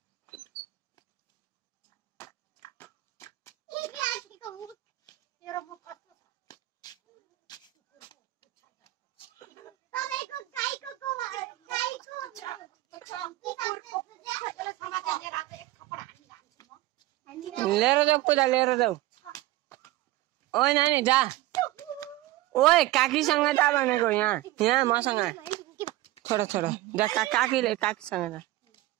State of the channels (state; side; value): quieter; left; 17.4 dB